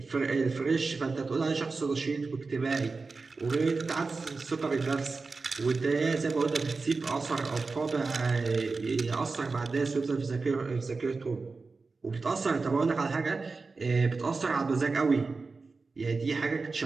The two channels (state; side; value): quieter; left; 4.1 dB